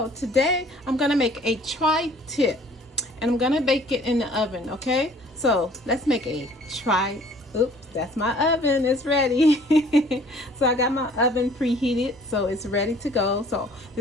today I'm gonna make a tri-tip and I'm gonna bake it in the oven. Okay, so let's make a oops, that's my oven, it's ready. So I got my oven preheated, so it's ready to go. So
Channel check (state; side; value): normal; both; correlation 0.54